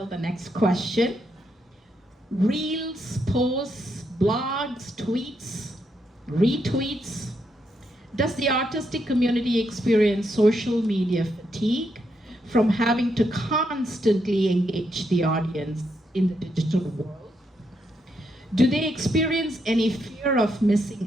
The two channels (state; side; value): normal; both; correlation 0.79